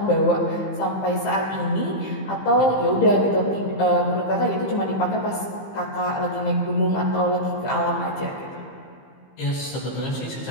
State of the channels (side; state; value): right; late; 15 ms